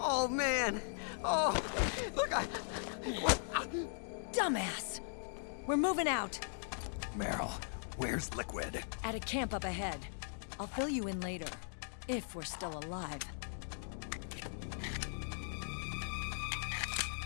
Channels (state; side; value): silent; right; digital silence